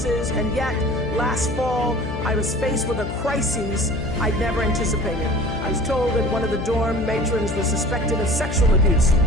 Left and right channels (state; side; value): noise; left; hum, 7 dB below the sound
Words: and yet, last fall, I was faced with a crisis I'd never anticipated. I was told that one of the dorm matrons was suspected of sexual abuse.